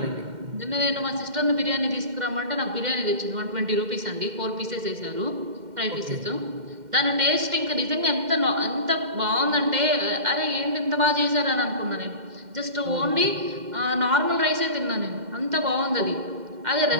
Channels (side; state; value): left; late; 2.1 ms